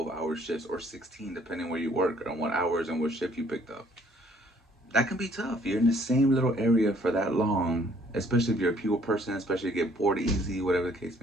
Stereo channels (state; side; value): normal; both; correlation 0.61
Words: hour shifts, or 16, depending where you work and what hours and what shift you picked up. That can be tough. You're in the same little area for that long, especially if you're a people person, especially if you get bored easy, whatever the case